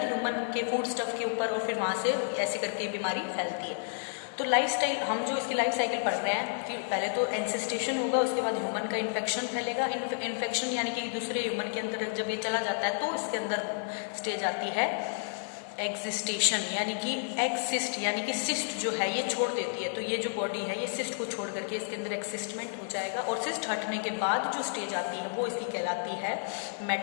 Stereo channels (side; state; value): right; silent; 57 dB below the other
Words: ह्यूमन के फूड स्टफ के ऊपर, और फिर वहाँ से ऐसे करके बीमारी फैलती है। तो लाइफ स्टाइल, हम जो इसकी लाइफ साइकिल पढ़ रहे हैं कि पहले तो एनसिस्टेशन होगा, उसके बाद ह्यूमन का इन्फेक्शन फैलेगा। इन्फेक्शन यानी कि दूसरे ह्यूमन के अंदर जब ये चला जाता है तो इसके अंदर स्टेज आती है एग्जिस्टेशन, यानी कि एक्सिस्ट, यानी कि सिस्ट जो है ये छोड़ देती है। तो ये जो बॉडी है ये सिस्ट को छोड़ करके इसके अंदर एक्सिस्टमेंट हो जाएगा, और सिस्ट हटने के बाद जो स्टेज आती है वो इसकी कहलाती है